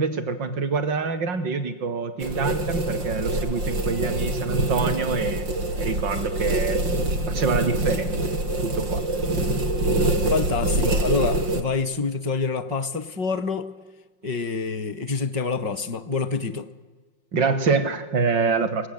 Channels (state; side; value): late; left; 5.6 ms